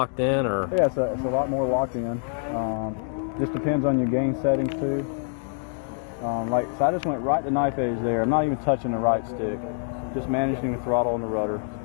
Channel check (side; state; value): right; silent; 61 dB below the other